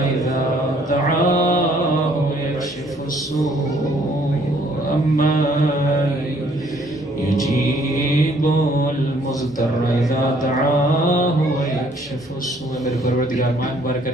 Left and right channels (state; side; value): normal; both; correlation 0.63